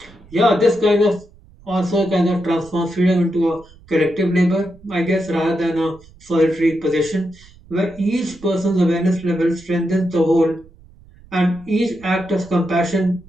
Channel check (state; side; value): noise; right; rumble, 25 dB below the sound